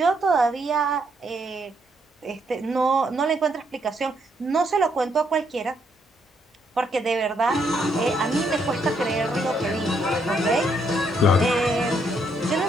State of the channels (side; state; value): both; normal; correlation 0.74